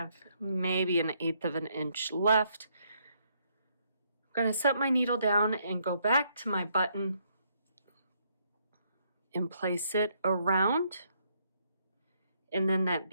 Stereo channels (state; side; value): inverted; both; correlation -0.72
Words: maybe 1/8 of an inch left. I'm going to set my needle down and go back to my button and place it around, and then that